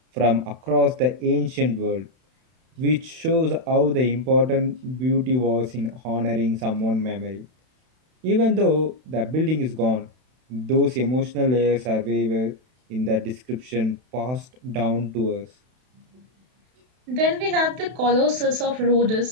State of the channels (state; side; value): late; left; 31 ms